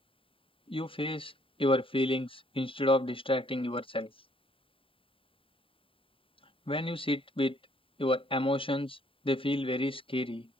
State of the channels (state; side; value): late; right; 0.26 ms